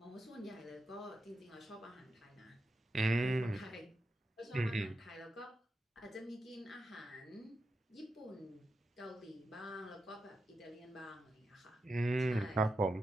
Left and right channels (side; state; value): both; normal; correlation 0.87